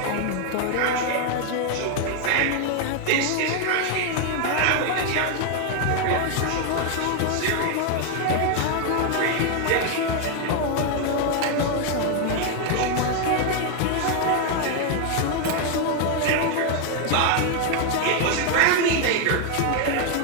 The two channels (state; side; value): different; both; correlation 0.01